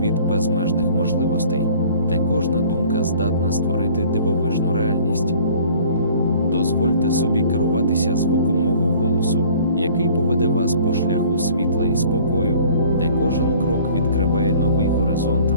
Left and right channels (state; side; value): inverted; both; correlation -0.51